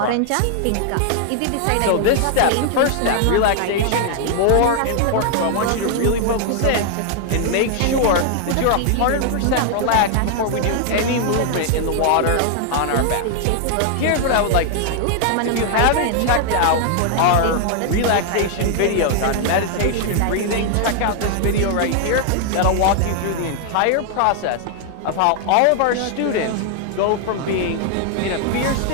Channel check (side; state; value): both; different; correlation 0.00